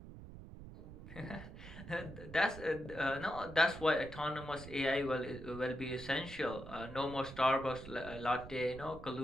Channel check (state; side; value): noise; right; rumble, 13 dB below the sound